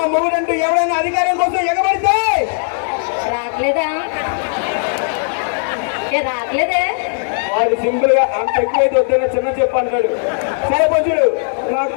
మూడండి ఎవరైనా అధికారం కోసం ఎగబడితే రావట్లేదే. వాడు సింపుల్ గా అంత ఎక్కువైతే వద్దన్న చిన్న చెప్పు అంటాడు. సరే కొంచెడు నాకు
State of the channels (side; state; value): right; silent; 58 dB below the other